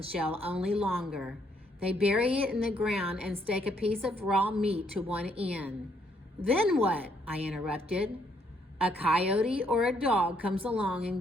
shell, only longer. They bury it in the ground and stake a piece of raw meat to one end. Then what? I interrupted. A coyote or a dog comes along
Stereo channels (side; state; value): both; normal; correlation 0.71